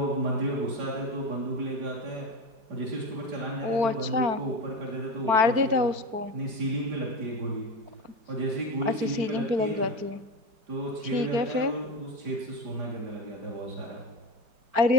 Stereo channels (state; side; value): late; left; 4.5 ms